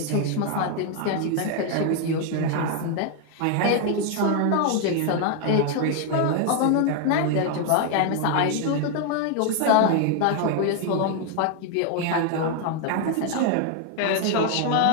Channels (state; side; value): different; both; correlation 0.00